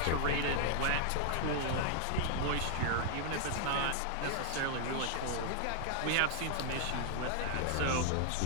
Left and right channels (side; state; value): both; different; correlation 0.00